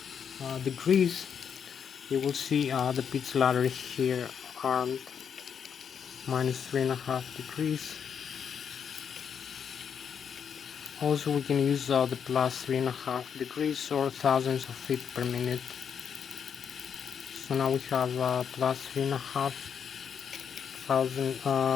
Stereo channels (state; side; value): quieter; right; 7.4 dB